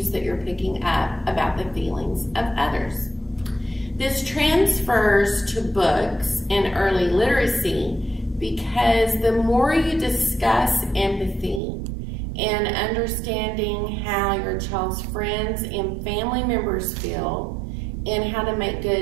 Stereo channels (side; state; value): left; drops out; at 11.6 s